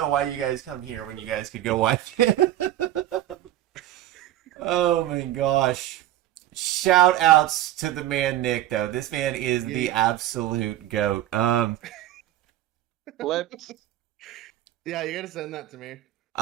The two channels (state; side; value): quieter; left; 13.9 dB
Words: why you guys come here when you guys could go watch it. Oh my gosh. Shout outs to the man Nick though. This man is the absolute goat. Flips. Yeah, you gotta send that to me.